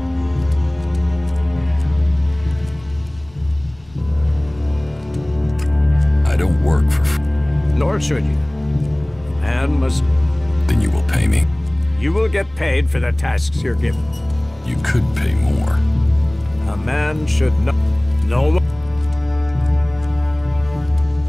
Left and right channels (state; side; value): noise; left; rumble, 27 dB below the sound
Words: I don't work for... Nor should you. Man must... Then you will pay me. You will get paid for the tasks you're given. You could pay more. A man should know... No...